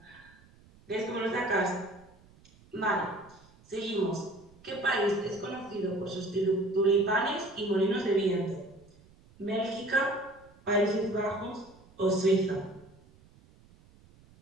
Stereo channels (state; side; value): noise; right; rumble, 26 dB below the sound